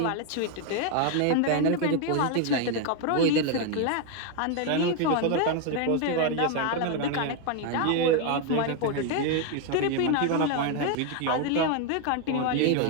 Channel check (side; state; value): both; different; correlation 0.01